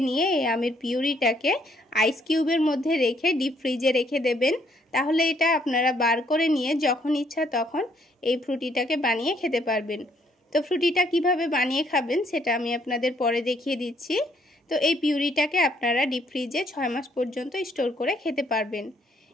নিয়ে এই আমের পিউরিটাকে আইস কিউবের মধ্যে রেখে ডিপ ফ্রিজে রেখে দেবেন। তাহলে এটা আপনারা বার করে নিয়ে যখন ইচ্ছা তখন এই ফ্রুটিটাকে বানিয়ে খেতে পারবেন। তো ফ্রুটিটা কিভাবে বানিয়ে খাবেন সেটা আমি আপনাদের পরে দেখিয়ে দিচ্ছি। তো এই পিউরিটাকে আপনারা ডিপ ফ্রিজে 6 মাস পর্যন্ত স্টোর করে খেতে পারবেন।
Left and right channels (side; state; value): both; normal; correlation 0.68